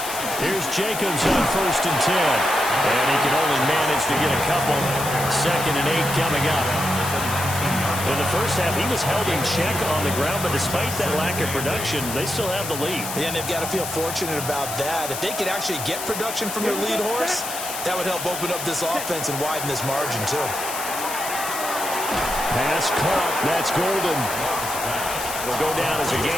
Here's Jacobs on 1st and 10. And he can only manage to get a couple. 2nd and 8 coming up. In the first half, he was held in check on the ground, but despite that lack of production, they still have the lead. Yeah, and they've got to feel fortunate about that. If they could actually get production from their lead horse, that would help open up this offense and widen this margin, too. Pass caught. That's Golden. Will go down as a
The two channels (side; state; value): left; noise; hiss, 7 dB below the sound